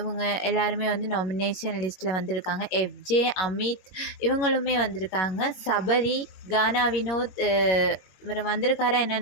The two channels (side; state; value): right; late; 21 ms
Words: எல்லாருமே வந்து நாமினேஷன் லிஸ்ட்டில் வந்திருக்காங்க. எஃப்ஜே, அமித் இவங்களுமே வந்திருக்காங்க. சபரி, கானா வினோத் இவர் வந்திருக்காரா